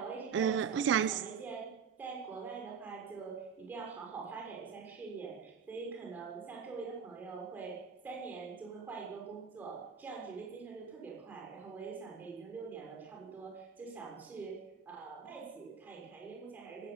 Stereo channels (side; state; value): left; quieter; 6.7 dB